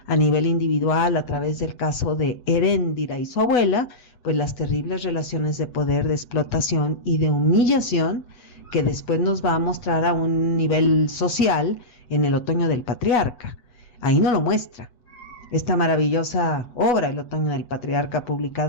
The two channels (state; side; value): late; right; 8.1 ms